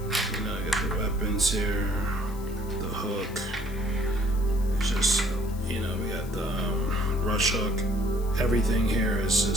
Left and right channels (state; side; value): noise; left; hiss, 20 dB below the sound